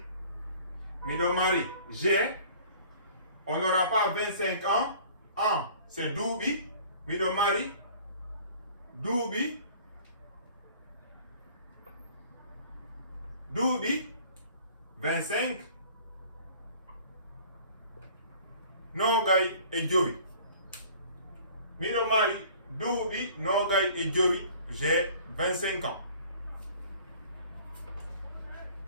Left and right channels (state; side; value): inverted; both; correlation -0.50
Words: Mido Mari. G, on n'aura pas 25 ans. En, c'est Doubi. Mido Mari. Doubi. Doubi. 25. Nogay et Joey. Mido Mari. Doubi. Nogay et Joey. J'ai 25 ans.